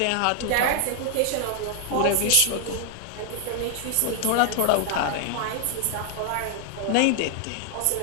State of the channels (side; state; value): both; different; correlation 0.00